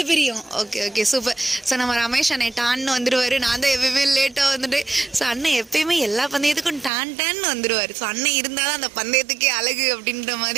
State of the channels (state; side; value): drops out; left; at 6.9 s